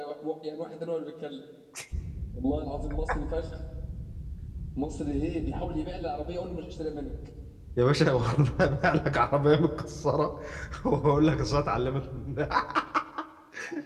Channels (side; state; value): both; identical; correlation 1.00